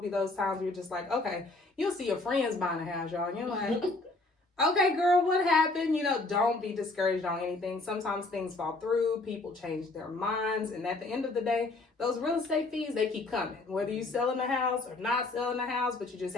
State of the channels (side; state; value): right; quieter; 3.1 dB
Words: those times where you're just like, okay, you'll see your friends buying a house, y'all, and you're like, okay, girl, what happened? You know, don't be discouraged on anything. Sometimes things fall through, people change their minds, and at the end of the day, those real estate fees, they keep coming. Whether you're selling the house or not selling the house, but you just